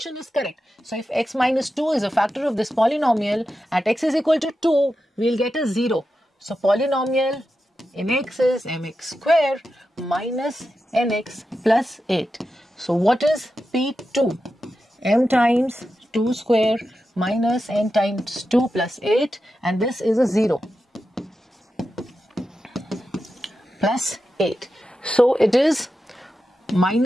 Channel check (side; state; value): both; normal; correlation 0.90